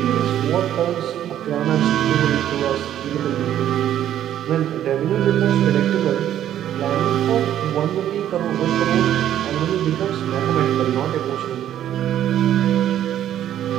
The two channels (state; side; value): quieter; left; 11.2 dB